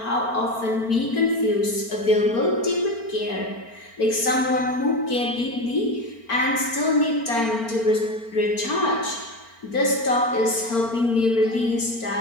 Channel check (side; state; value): right; late; 4.4 ms